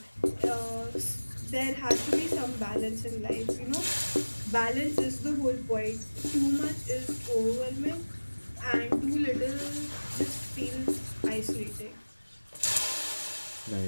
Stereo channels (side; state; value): both; inverted; correlation -1.00